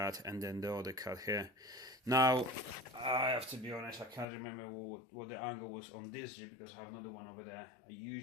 and then the other cut here. Now I have to be honest, I can't remember what the angle was on this jig because I have another one over there. I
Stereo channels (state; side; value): drops out; right; at 4.2 s